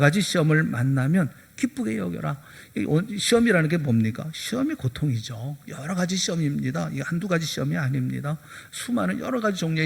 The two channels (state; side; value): identical; both; correlation 1.00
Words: 시험을 만나면 기쁘게 여겨라. 시험이라는 게 뭡니까? 시험이 고통이죠. 여러 가지 시험입니다. 이게 한두 가지 시험이 아닙니다. 수많은 여러 가지